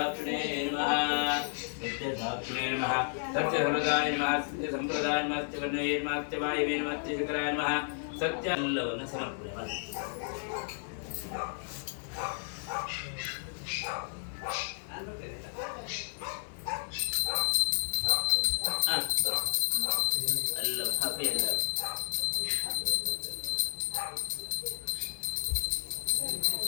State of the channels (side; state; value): right; silent; digital silence